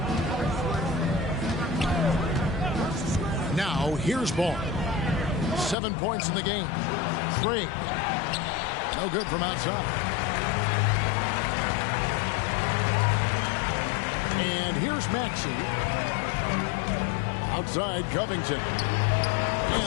Now, here's Ball. 7 points in the game. Craig. No good from outside. And here's Maxey. Outside, Covington.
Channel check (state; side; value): drops out; right; at 5.8 s